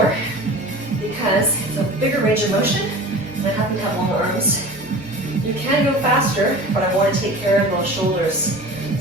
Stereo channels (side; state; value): both; normal; correlation 0.38